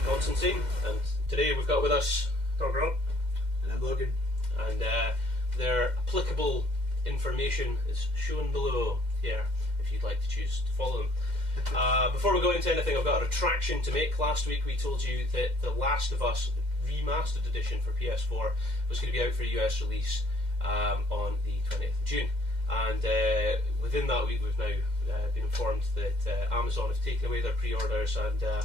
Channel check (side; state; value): left; late; 2.1 ms